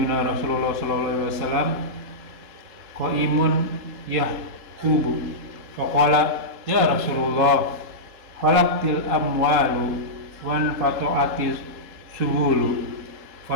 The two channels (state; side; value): late; left; 3.7 ms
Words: Rasulullah sallallahu alaihi wasallam qa'imun yahqubu faqala ya Rasulullah falaqtil amwalu wan fatu'atiz suhulu